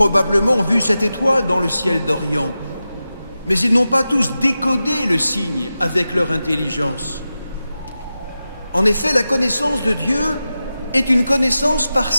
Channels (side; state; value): both; inverted; correlation -0.93